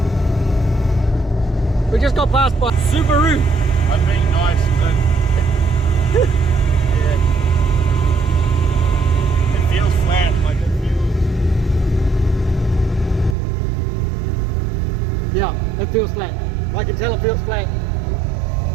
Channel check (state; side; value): drops out; left; at 13.4 s